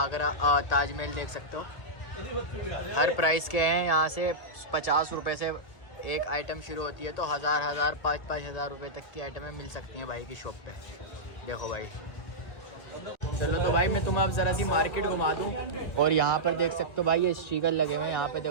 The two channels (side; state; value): right; late; 1.8 ms